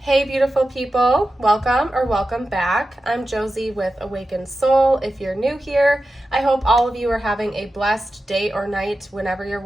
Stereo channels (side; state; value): both; normal; correlation 0.92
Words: Hey beautiful people, welcome or welcome back. I'm Josie with Awakened Soul. If you're new here, I hope all of you are having a blessed day or night whenever you're